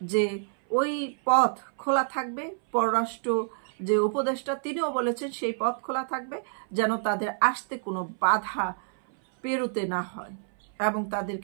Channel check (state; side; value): silent; left; 59 dB below the other